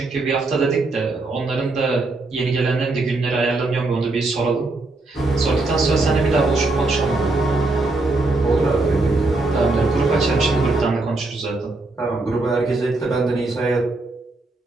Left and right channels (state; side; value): quieter; left; 3.2 dB